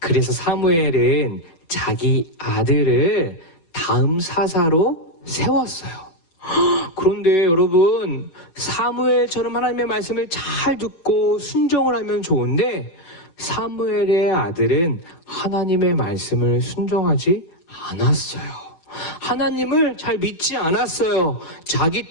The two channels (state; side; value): late; right; 10 ms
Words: 사무엘은 자기 아들을 다음 사사로 세웠어요. 그런데 여러분, 사무엘처럼 하나님의 말씀을 잘 듣고 순종을 하면 좋은데 사무엘의 아들은 하나님의 말씀을 순종하지 않았어요. 하나님을 잘 믿지 않았어요. 자기